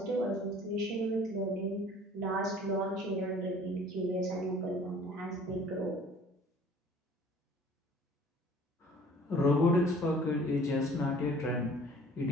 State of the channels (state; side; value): normal; both; correlation 0.51